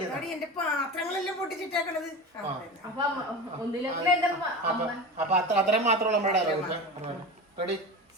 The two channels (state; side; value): normal; both; correlation 0.28